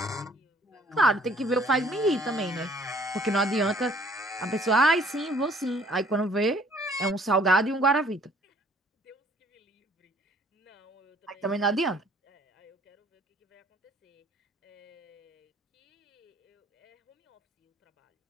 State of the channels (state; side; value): normal; both; correlation 0.58